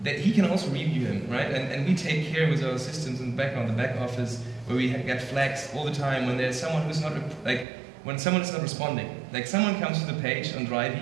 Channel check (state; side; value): drops out; left; at 7.7 s